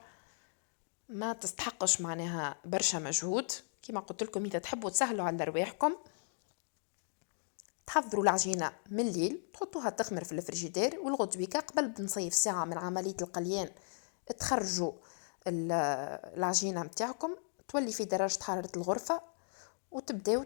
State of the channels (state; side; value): silent; right; digital silence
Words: ما تستحقش معناها برشا مجهود. كما قلت لكم إذا تحبوا تسهلوا على رواحكم تحضروا العجينة من الليل تحطوها تخمر في الفريجيدير، والغدويكا قبل بنصيف ساعة من عملية القليان تخرجوا العجينة متاعكم تولي في درجة حرارة الغرفة وتبداو